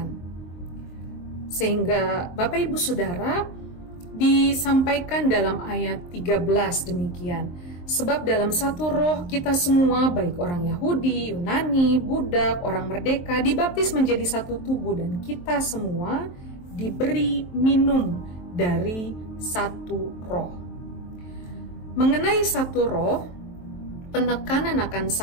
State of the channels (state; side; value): late; right; 23 ms